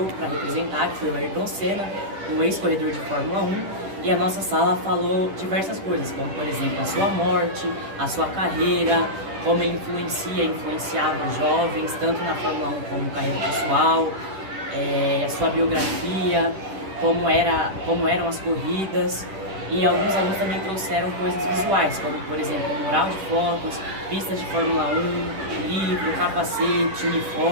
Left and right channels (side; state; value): left; late; 10 ms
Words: para representar, que foi o Ayrton Senna, um ex-corredor de Fórmula 1. E a nossa sala falou diversas coisas, como por exemplo a sua morte, a sua carreira, como ele influenciava os jovens, tanto na Fórmula 1 como carreira pessoal, a sua biografia, como eram as corridas. E alguns alunos também trouxeram coisas visuais, como por exemplo mural de fotos, pistas de Fórmula 1, livro, capacete,